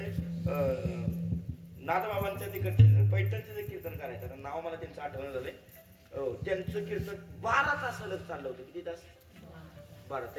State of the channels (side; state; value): both; identical; correlation 1.00